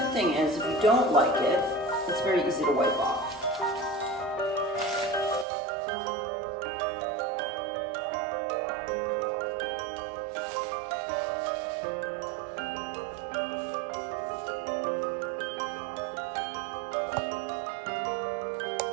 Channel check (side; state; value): left; drops out; at 5.5 s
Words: thing is, if you don't like it, it's very easy to wipe off.